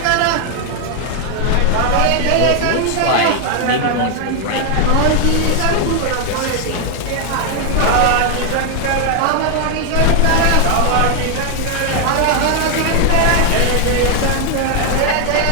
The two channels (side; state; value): both; different; correlation 0.00